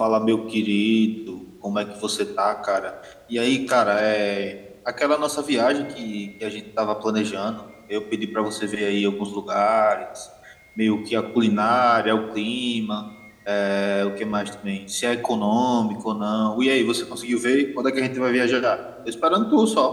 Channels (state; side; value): identical; both; correlation 1.00